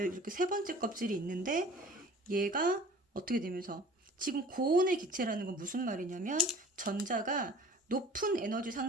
이렇게 세 번째 껍질이 있는데, 얘가 어떻게 되면서 지금 고온의 기체라는 건 무슨 말이냐면 전자가 높은 에너지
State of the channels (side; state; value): both; normal; correlation 0.46